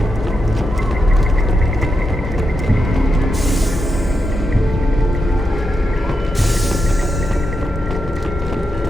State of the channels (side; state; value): both; normal; correlation 0.86